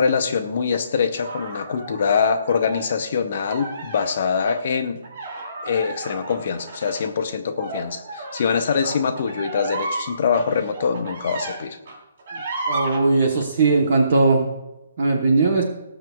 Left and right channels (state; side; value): inverted; both; correlation -0.70